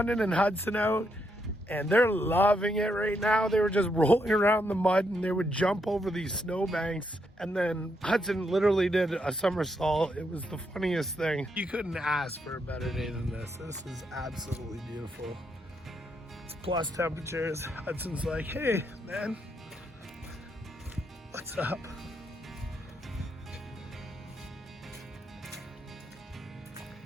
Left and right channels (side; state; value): both; normal; correlation 0.79